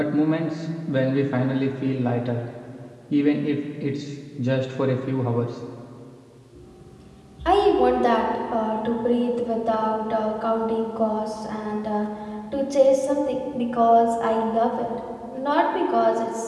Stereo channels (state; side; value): identical; both; correlation 1.00